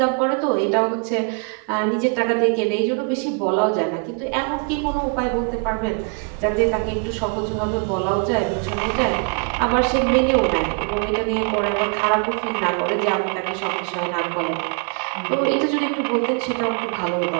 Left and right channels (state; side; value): quieter; left; 37.9 dB